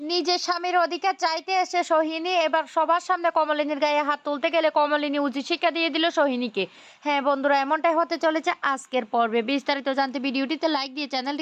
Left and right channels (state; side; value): identical; both; correlation 1.00